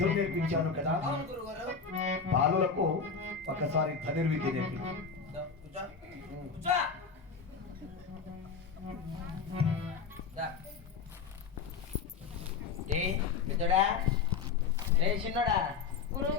నేర్పించాను కదా. బాలులకు ఒకసారి ధనుర్విద్య నేర్పించాను. చిన్నోడా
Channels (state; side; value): quieter; right; 5.6 dB